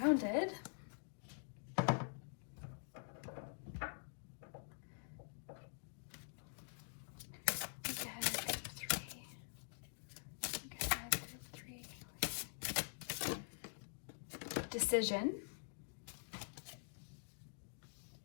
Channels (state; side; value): silent; right; digital silence